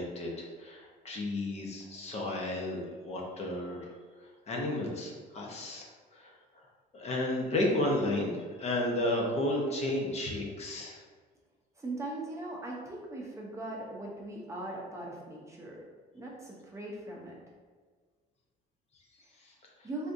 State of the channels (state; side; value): normal; both; correlation 0.38